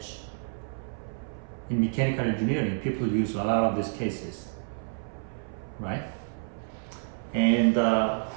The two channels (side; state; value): left; silent; 57 dB below the other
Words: In mechanical engineering, people use a lot of these cases, right? And